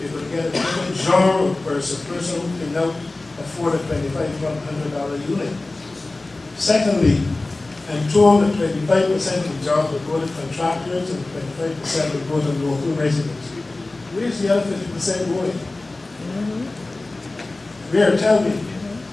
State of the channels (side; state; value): right; quieter; 3.1 dB